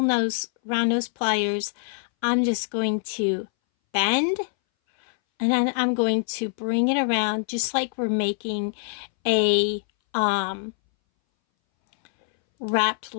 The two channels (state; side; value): silent; right; 61 dB below the other